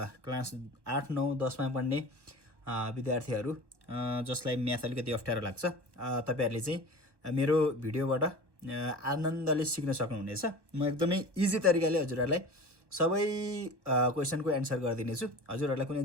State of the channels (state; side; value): late; left; 1.2 ms